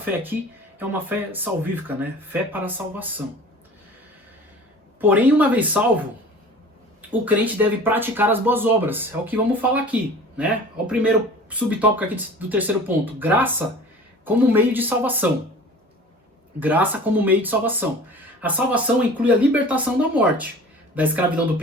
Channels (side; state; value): both; normal; correlation 0.42